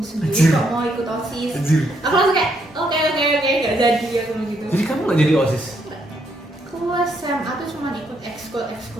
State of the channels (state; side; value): normal; both; correlation 0.74